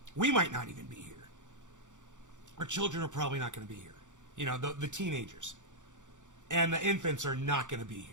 We might not even be here. Our children are probably not going to be here. The teenagers. And the infants are not going to be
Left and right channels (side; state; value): left; late; 0.86 ms